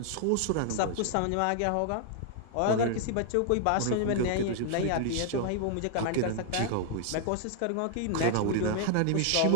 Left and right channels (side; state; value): both; different; correlation 0.00